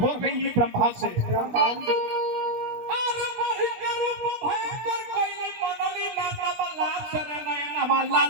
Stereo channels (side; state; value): left; late; 17 ms